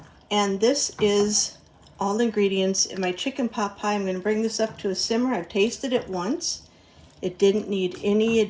And this is all the ingredients in my chicken pot pie. I'm going to bring this up to a simmer. I've tasted it once. It didn't need any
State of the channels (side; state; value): both; identical; correlation 1.00